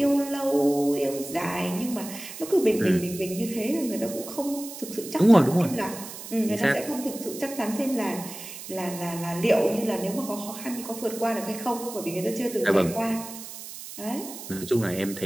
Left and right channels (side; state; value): right; noise; hiss, 12 dB below the sound